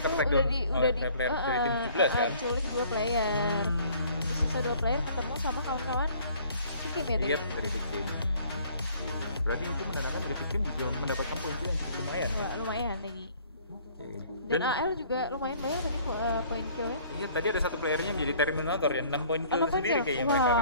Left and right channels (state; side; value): inverted; both; correlation -0.55